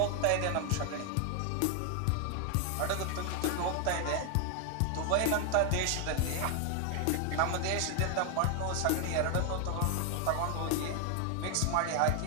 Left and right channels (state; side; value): different; both; correlation 0.01